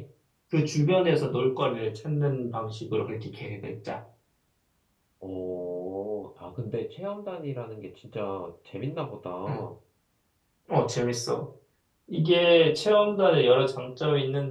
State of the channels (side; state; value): both; identical; correlation 1.00